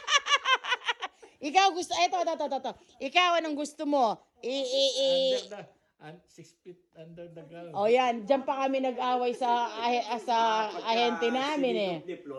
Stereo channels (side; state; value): both; identical; correlation 1.00